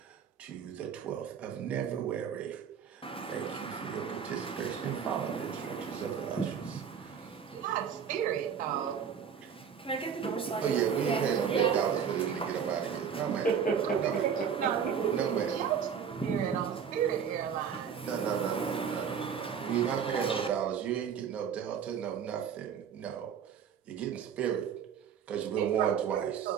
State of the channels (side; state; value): left; quieter; 7.5 dB